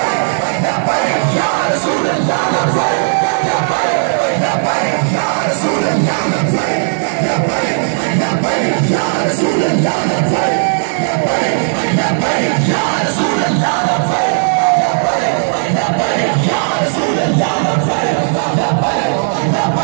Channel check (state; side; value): silent; left; 70 dB below the other